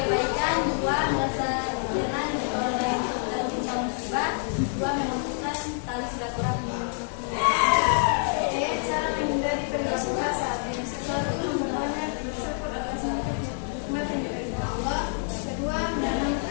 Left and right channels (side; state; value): right; silent; 60 dB below the other